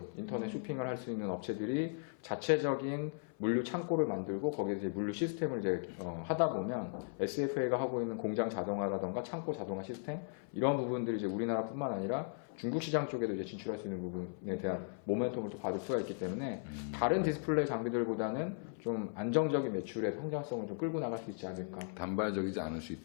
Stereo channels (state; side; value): silent; right; 53 dB below the other